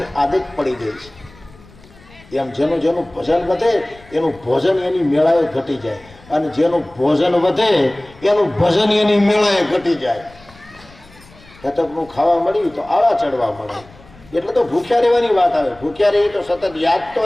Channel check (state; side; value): noise; left; rumble, 25 dB below the sound